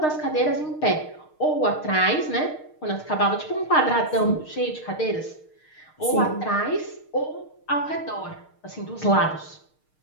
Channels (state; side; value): late; right; 6.5 ms